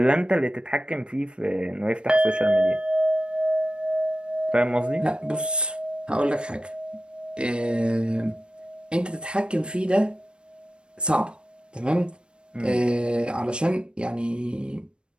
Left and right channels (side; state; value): left; late; 0.055 ms